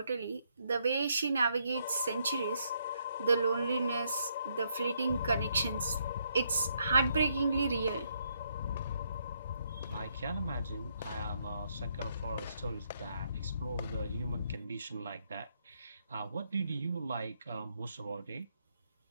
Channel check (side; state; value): both; inverted; correlation -0.74